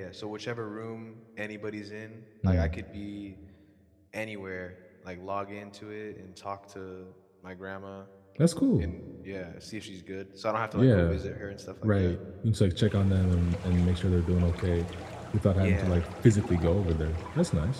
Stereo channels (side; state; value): both; identical; correlation 1.00